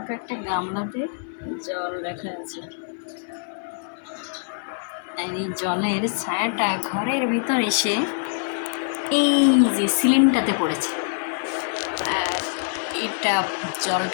একটা গামলাতে জল রাখা আছে, আর এই জলের ছায়াটা ঘরের ভিতর এসে এই যে সিলিংটাতে পড়েছে। আর এটা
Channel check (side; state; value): right; silent; digital silence